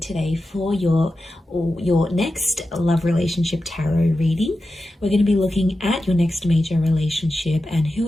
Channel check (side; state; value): both; normal; correlation 0.92